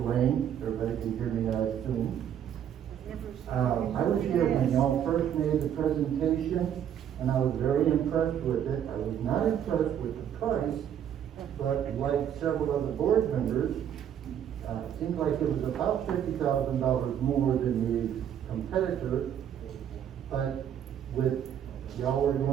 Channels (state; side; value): quieter; left; 9.5 dB